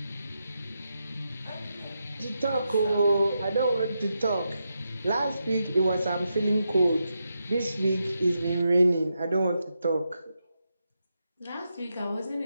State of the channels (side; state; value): both; inverted; correlation -0.85